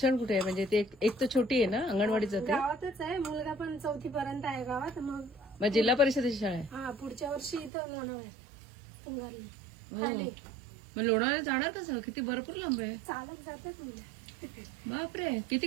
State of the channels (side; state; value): left; drops out; at 7.7 s